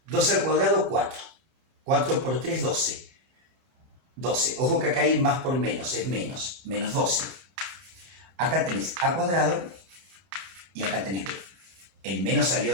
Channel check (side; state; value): left; late; 30 ms